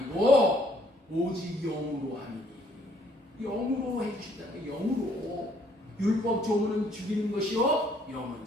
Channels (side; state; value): both; normal; correlation 0.65